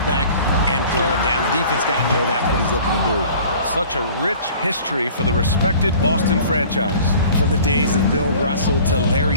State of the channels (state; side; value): inverted; both; correlation -0.48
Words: and throw it down. The defense got to know that's what he's looking to do. Such a rich history for the respected Boston franchise. From the days of Bill Russell to